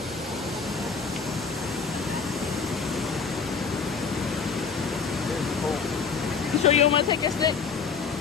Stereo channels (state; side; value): quieter; right; 5.6 dB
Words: You sure you don't want to take your stick?